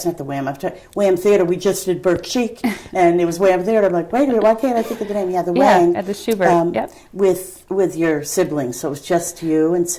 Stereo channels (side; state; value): both; identical; correlation 1.00